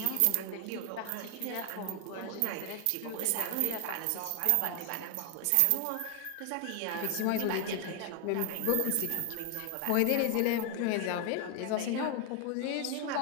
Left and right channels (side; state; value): both; different; correlation 0.01